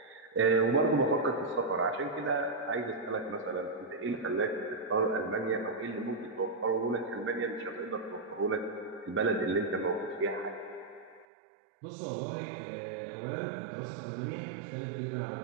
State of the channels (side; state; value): left; drops out; at 11.2 s